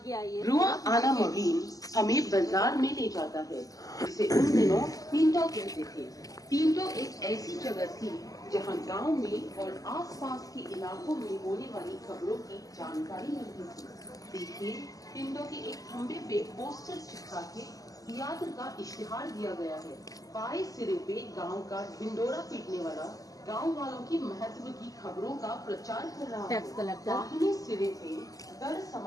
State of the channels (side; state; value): right; late; 0.17 ms